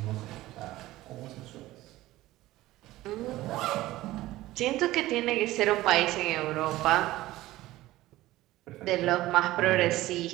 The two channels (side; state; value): left; quieter; 16.8 dB